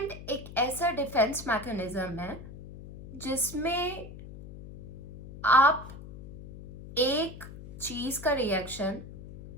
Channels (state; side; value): noise; left; hum, 14 dB below the sound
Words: एक ऐसा defence mechanism है जिसमें आप एक चीज का रिएक्शन